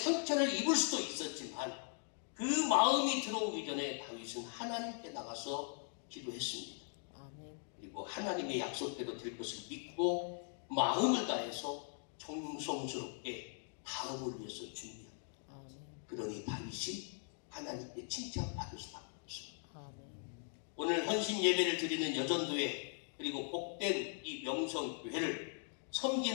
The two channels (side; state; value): right; silent; 51 dB below the other